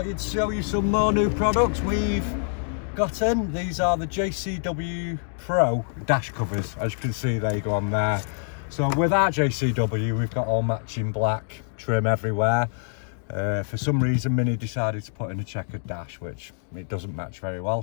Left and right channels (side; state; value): right; silent; digital silence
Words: you'd show you some more new products we've got in. These are the JCW Pro dash covers. As you can see, they go on there. So with our JCW, we've got all matching black trim everywhere. For some reason, Mini decided to put in a checkered dash, which it doesn't match very well,